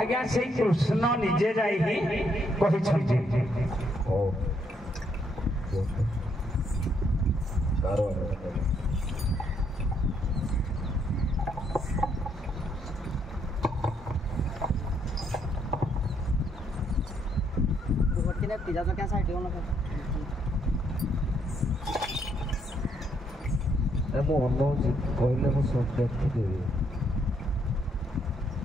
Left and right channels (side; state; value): both; normal; correlation 0.73